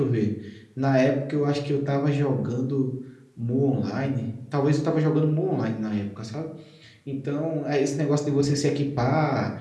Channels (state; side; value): identical; both; correlation 1.00